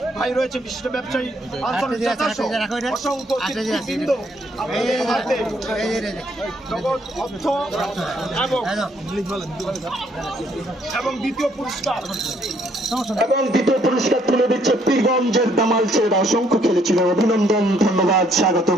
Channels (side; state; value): both; normal; correlation 0.68